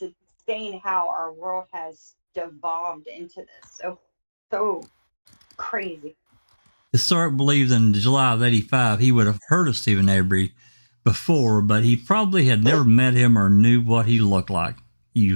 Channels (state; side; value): inverted; both; correlation -1.00